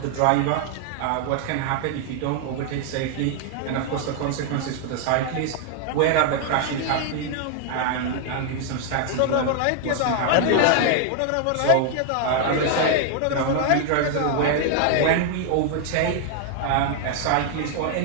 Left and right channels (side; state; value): both; different; correlation 0.00